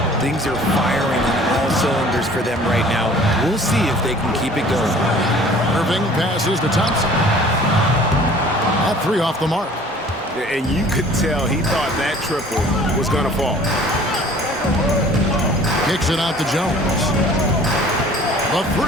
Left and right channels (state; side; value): normal; both; correlation 0.50